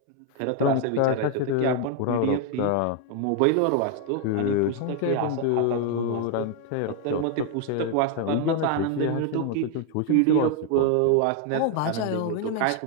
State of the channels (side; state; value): both; different; correlation 0.01